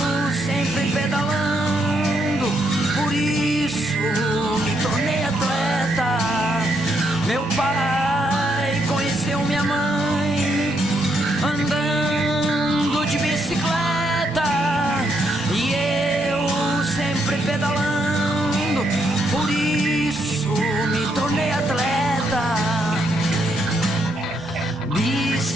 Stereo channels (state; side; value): normal; both; correlation 0.76